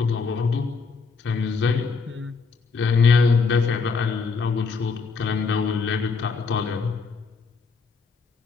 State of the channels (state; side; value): quieter; right; 4.8 dB